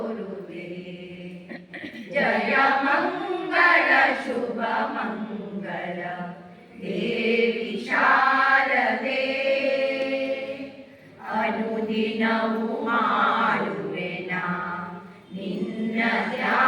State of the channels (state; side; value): identical; both; correlation 1.00